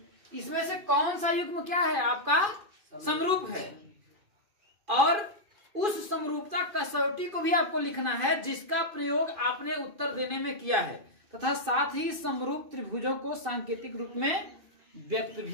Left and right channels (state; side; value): late; left; 2.5 ms